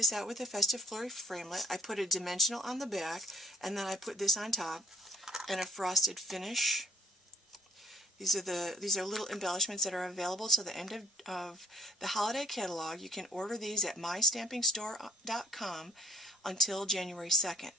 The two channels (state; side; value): normal; both; correlation 0.59